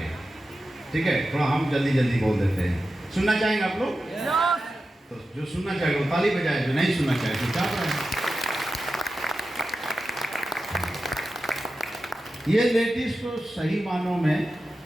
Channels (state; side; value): normal; both; correlation 0.92